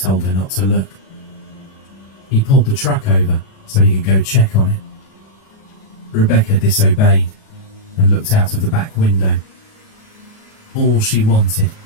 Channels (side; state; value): right; late; 37 ms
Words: her not to look. He pulled the truck over so he could go check on it. Rebecca disobeyed and looked out of the back window. All she wanted